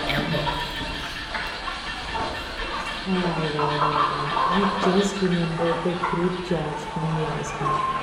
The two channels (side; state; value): both; identical; correlation 1.00